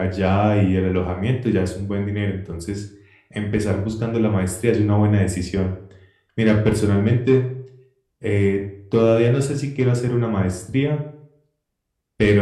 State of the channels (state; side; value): identical; both; correlation 1.00